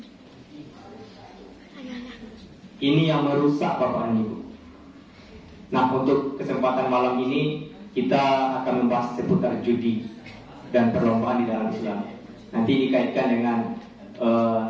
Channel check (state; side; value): identical; both; correlation 1.00